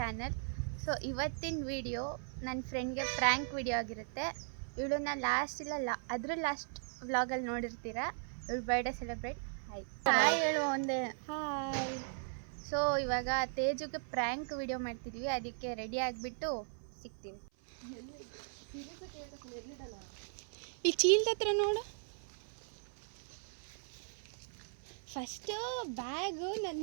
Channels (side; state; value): left; silent; 52 dB below the other